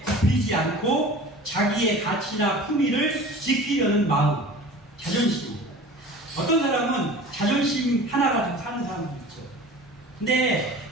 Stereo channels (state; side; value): normal; both; correlation 0.40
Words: 굽히지 않고 자기의 가치나 품위를 지키려는 마음, 자존심. 어떤 사람은 자존심 하나 가지고 사는 사람도 있죠. 근데